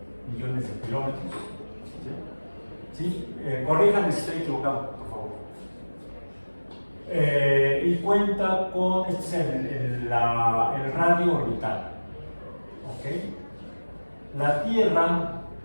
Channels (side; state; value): both; inverted; correlation -1.00